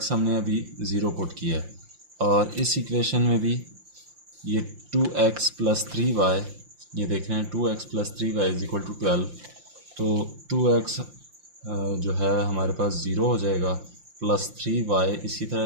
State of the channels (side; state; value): left; late; 5.7 ms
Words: हमने अभी 0 पुट किया है, और इस इक्वेशन में भी ये 2x प्लस 3y, ये देख रहे हैं 2x plus 3y is equal to 12, तो 2x जो है हमारे पास 0 हो जाएगा, प्लस 3y इसी तरह